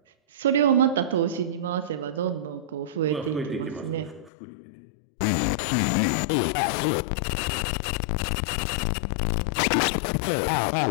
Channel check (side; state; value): right; drops out; at 4.3 s